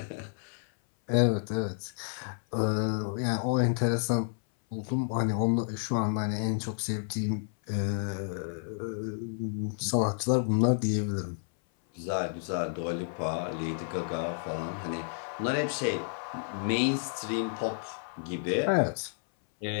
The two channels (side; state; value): right; silent; 57 dB below the other